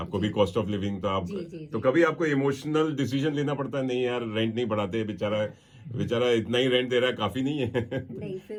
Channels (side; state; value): both; identical; correlation 1.00